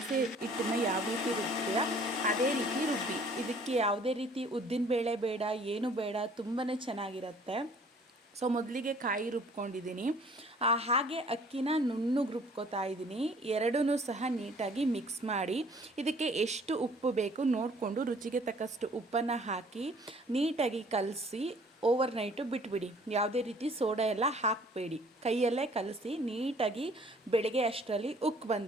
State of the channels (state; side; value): normal; both; correlation 0.55